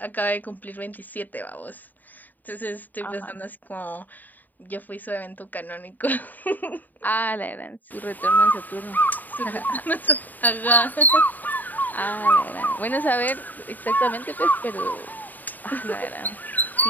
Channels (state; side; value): late; right; 0.085 ms